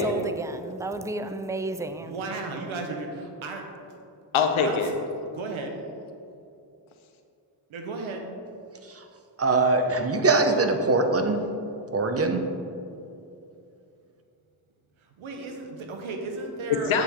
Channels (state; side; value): normal; both; correlation -0.05